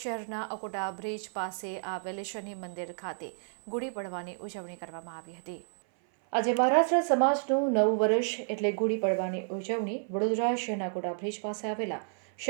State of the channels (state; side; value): silent; left; 55 dB below the other